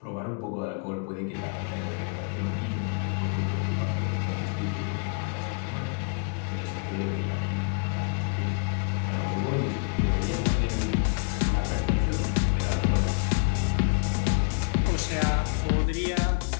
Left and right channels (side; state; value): right; quieter; 36.0 dB